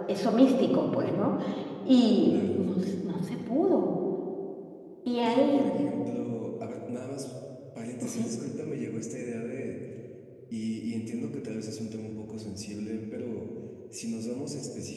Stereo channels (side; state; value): both; identical; correlation 1.00